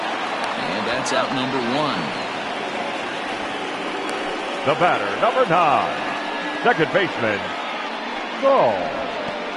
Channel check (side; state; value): both; identical; correlation 1.00